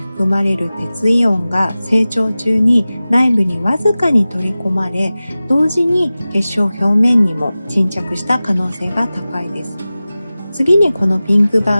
まれる鉄イオンが成長中に内部にわずかに取り込まれ、同時に結晶表面にも沈着した可能性が高いです。次にこのピンク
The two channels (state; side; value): inverted; both; correlation -0.96